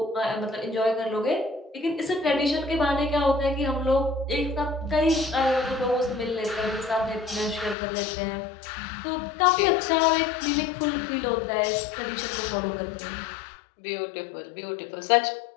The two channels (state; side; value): drops out; right; at 7.8 s